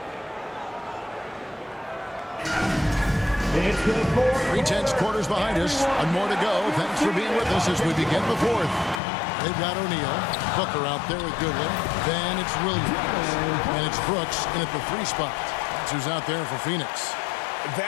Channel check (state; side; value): drops out; right; at 9.0 s